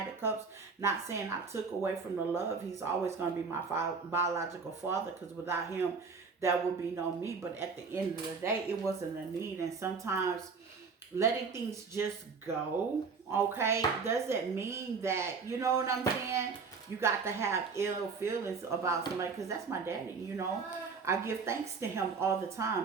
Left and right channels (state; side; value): quieter; left; 5.0 dB